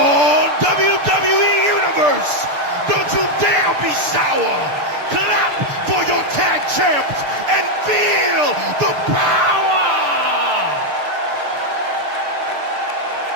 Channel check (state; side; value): late; left; 6.8 ms